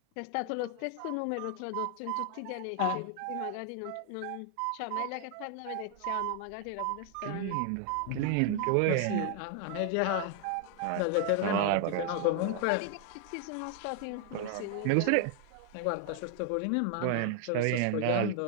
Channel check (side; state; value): both; different; correlation 0.00